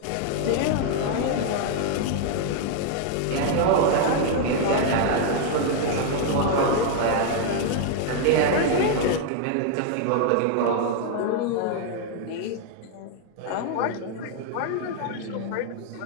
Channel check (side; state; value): both; different; correlation 0.00